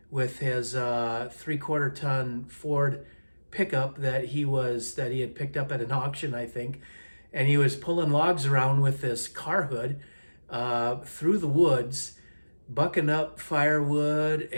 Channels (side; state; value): both; inverted; correlation -1.00